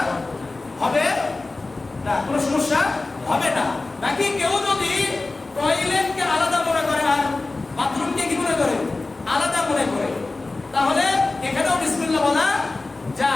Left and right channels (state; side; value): quieter; right; 3.3 dB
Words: হবে না, কোনো সমস্যা হবে না। বাকি কেউ যদি টয়লেটকে আলাদা মনে করে আর বাথরুমকে কি মনে করে? আলাদা মনে করে, তাহলে এখানেও বিসমিল্লাহ বলা